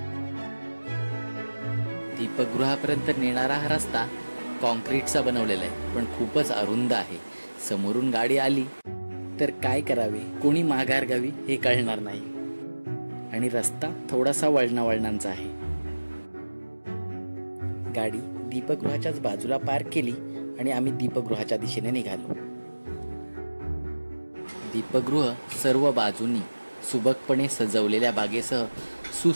दीपगृहापर्यंत नेणारा हा रस्ता कॉन्क्रीटचा बनवलेला आहे, पण खूपच अरुंद आहे. समोरून गाडी आली तर काय करावे, कोणी माघार घ्यावी हे कळणार नाही. आणि रस्ता थोडासा वळणावळणांचा आहे. गाडी दीपगृहाच्याच बाजूला पार्क केली आणि आम्ही दीपगृहाच्या दिशेने निघालो. दीपगृह सर्व बाजूंनी सुबकपणे सजवलेल्या बागेसह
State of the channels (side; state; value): both; inverted; correlation -1.00